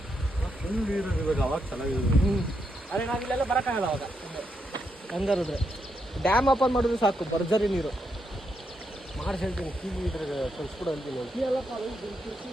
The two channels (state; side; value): normal; both; correlation 0.81